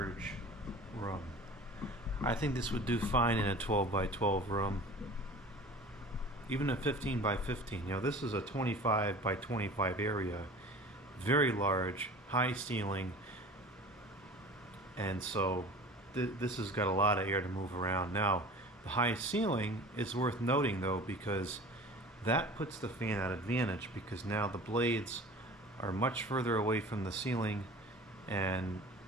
room. I think this would do fine in a 12 by 12 room. Even a 15 by 15. You know, this is a 25 by 25 area. Very large, high ceiling. And so this has got a lot of air to move around. Now, the high ceiling is worth noting though, because that puts the fan at advantage, because now the blades are much further away from the ceiling and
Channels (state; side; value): normal; both; correlation 0.41